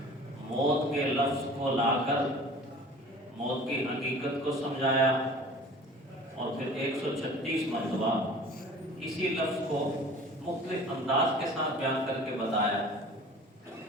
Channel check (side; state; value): both; normal; correlation 0.44